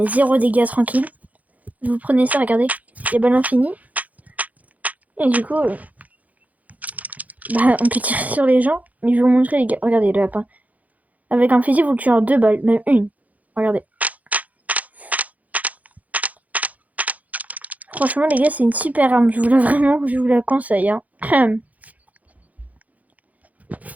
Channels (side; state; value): left; late; 0.076 ms